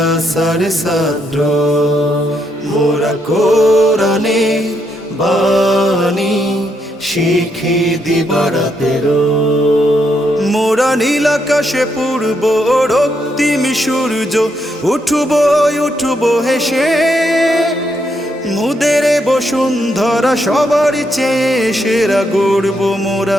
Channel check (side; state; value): both; normal; correlation 0.77